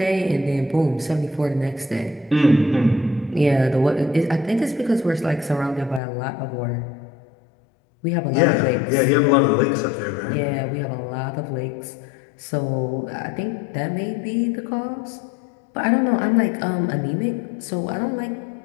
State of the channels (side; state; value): right; drops out; at 6.0 s